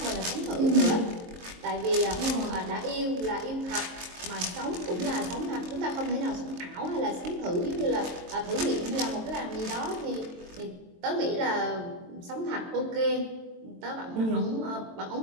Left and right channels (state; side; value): late; left; 22 ms